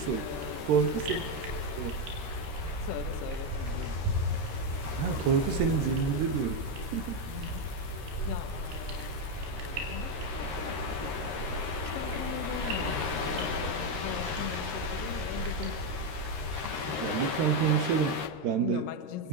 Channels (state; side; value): late; left; 13 ms